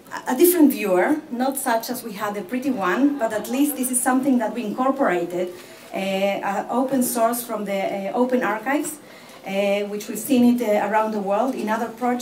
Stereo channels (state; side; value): identical; both; correlation 1.00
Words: different viewer, not such as we had the pretty one, but at least this is something that we incorporated, open source from the Open Archives, which we've seen it around the world in other